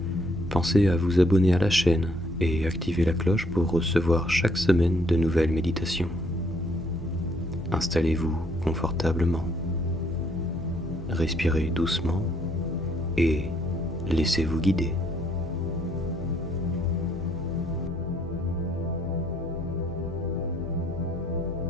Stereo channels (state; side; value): normal; both; correlation 0.67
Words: pensez à vous abonner à la chaîne et activer la cloche pour recevoir chaque semaine de nouvelles méditations. Installez-vous confortablement, respirez doucement et laissez-vous guider.